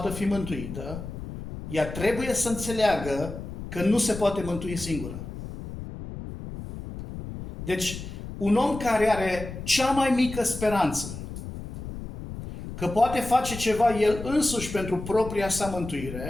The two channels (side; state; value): left; noise; rumble, 9 dB below the sound